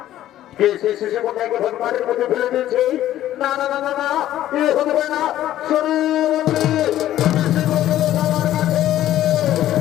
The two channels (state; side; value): quieter; right; 13.0 dB